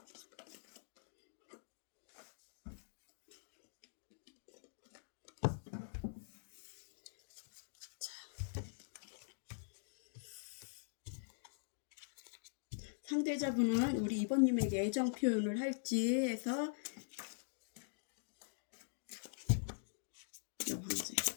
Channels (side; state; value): right; silent; digital silence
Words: 상대자분은 우리 2번님에게 애정 표현을 할지 해서 여왕제